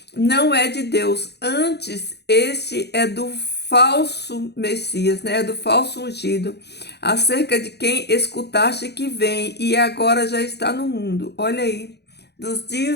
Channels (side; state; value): right; late; 0.48 ms